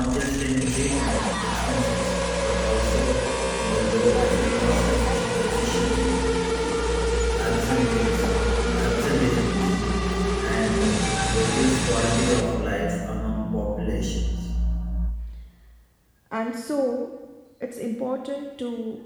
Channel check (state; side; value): identical; both; correlation 1.00